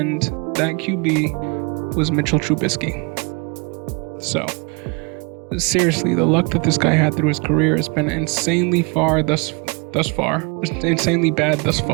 that QB was Mitchell Trubisky. So, seriously, the luck that this guy had through his career has been insanely bad thus far.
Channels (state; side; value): quieter; left; 31.9 dB